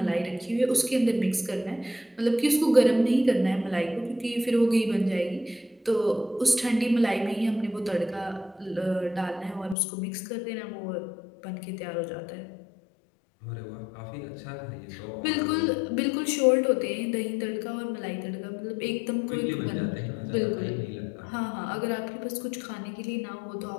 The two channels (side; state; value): right; drops out; at 9.8 s